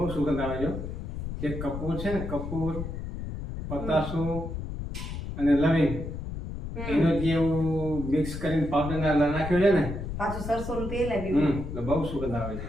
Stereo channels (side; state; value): left; noise; rumble, 6 dB below the sound